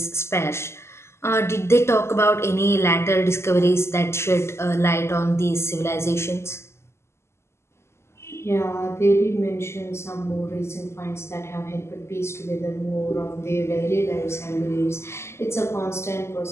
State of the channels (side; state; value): right; late; 0.13 ms